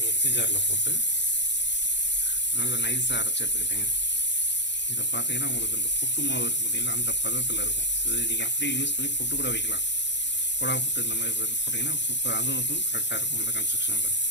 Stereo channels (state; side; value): late; right; 0.52 ms